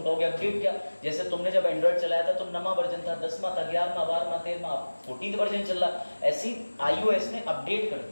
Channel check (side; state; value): both; inverted; correlation -1.00